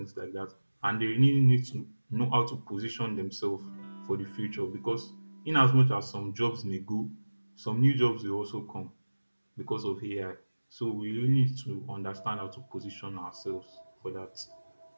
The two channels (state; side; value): inverted; both; correlation -1.00